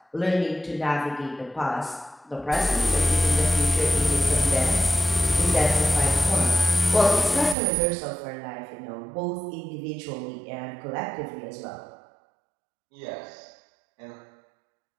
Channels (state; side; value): drops out; left; at 7.6 s